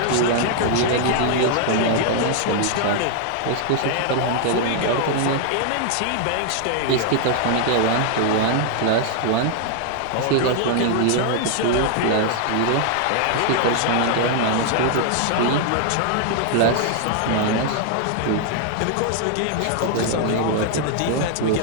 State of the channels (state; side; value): different; both; correlation 0.00